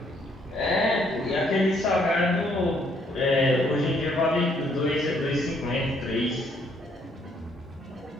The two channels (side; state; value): both; normal; correlation 0.68